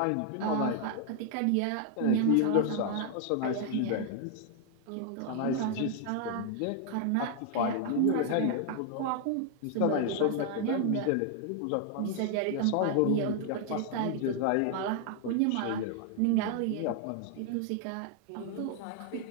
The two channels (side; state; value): both; different; correlation 0.00